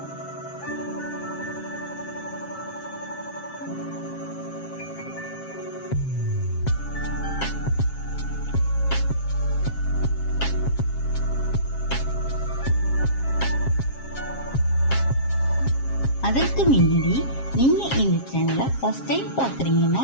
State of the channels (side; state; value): right; late; 7.4 ms